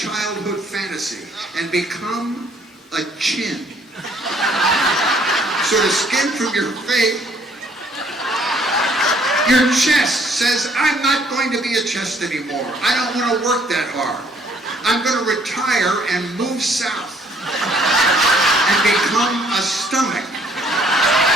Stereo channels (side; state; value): both; normal; correlation 0.63